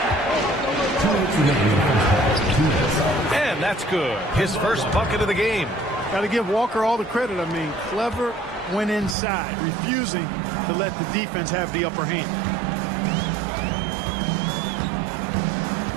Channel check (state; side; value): drops out; left; at 9.2 s